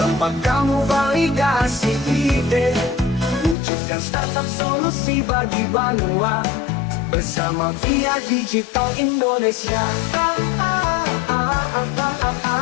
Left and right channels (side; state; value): right; drops out; at 3.6 s